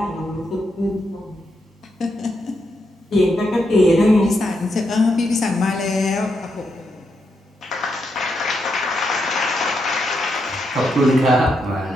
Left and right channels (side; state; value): both; normal; correlation 0.82